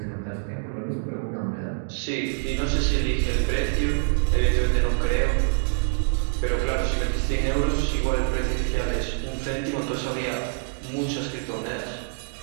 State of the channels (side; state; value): left; silent; digital silence